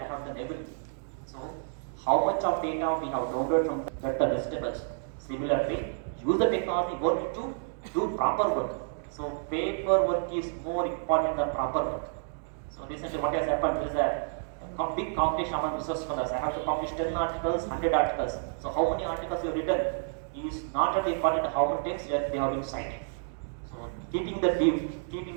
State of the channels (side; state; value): left; silent; digital silence